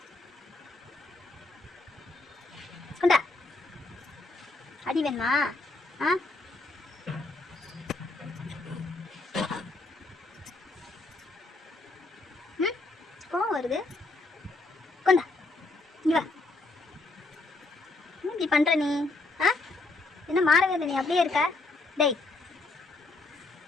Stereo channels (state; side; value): quieter; right; 3.2 dB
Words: கொண்டா. அடி வேணுமா? ஆ ம் கோவம் வருது. கொண்டா இங்க வா. இப்படி பண்ற நீ? ஆ என்ன மாறவே இல்லை, நீ அப்படியே இருக்க. டேய்